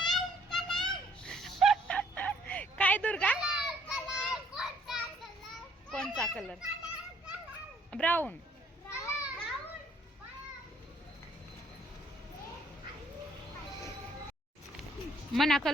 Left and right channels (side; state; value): both; normal; correlation 0.64